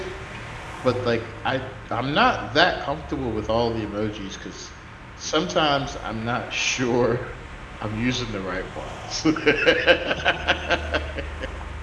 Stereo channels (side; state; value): both; identical; correlation 1.00